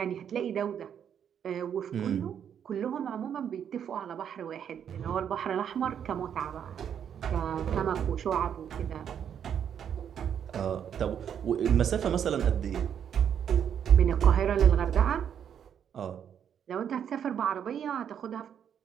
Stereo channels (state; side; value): quieter; left; 8.6 dB